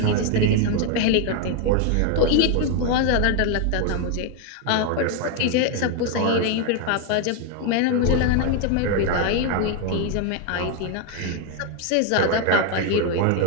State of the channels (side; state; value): both; different; correlation 0.01